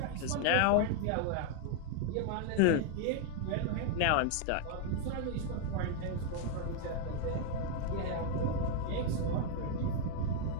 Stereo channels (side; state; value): both; different; correlation 0.00